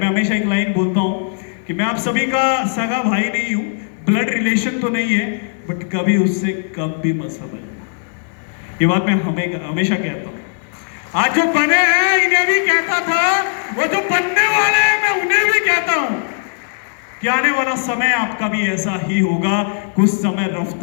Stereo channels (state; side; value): silent; right; 64 dB below the other